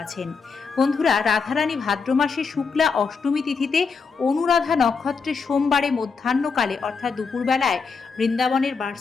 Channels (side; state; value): right; quieter; 5.1 dB